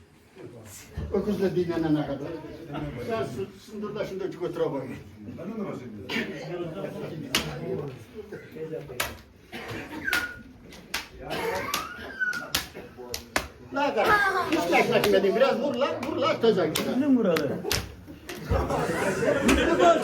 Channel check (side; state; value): both; identical; correlation 1.00